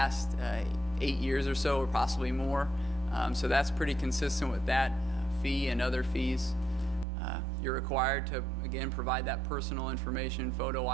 8 years or so, or possibly more. So that's pretty consistent with that fee and other fees. You're required to, again, provide that personal information, photo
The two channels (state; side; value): drops out; left; at 7.1 s